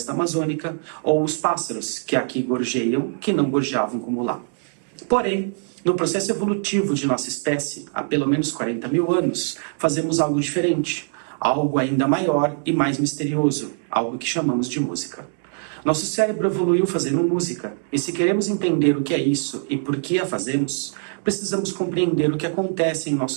amazônica ou os pássaros que aqui gorjeiam, que não gorjeavam como lá. Porém, no processo evolutivo de nossa espécie, há pelo menos 40 mil anos, fazemos algo diferente, algo ainda maior e mais misterioso, algo que chamamos de música. Nosso cérebro evoluiu fazendo música, e se queremos entender o que é isso e por que a fazemos, precisamos compreender o que acontece em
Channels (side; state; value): left; silent; digital silence